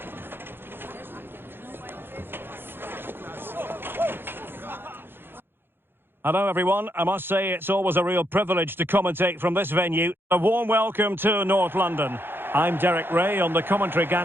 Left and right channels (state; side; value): late; left; 0.10 ms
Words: Hello everyone, I must say it's always a real privilege to commentate from this venue. A warm welcome to North London. I'm Derek Ray on the commentary